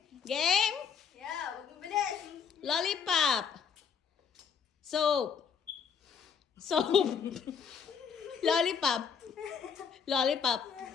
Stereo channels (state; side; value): quieter; right; 6.7 dB